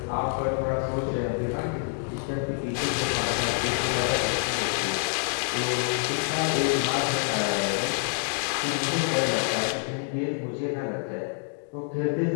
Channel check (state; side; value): silent; right; 60 dB below the other